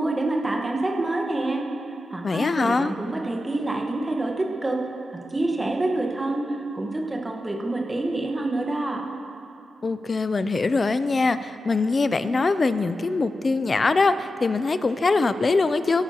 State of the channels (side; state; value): both; normal; correlation 0.91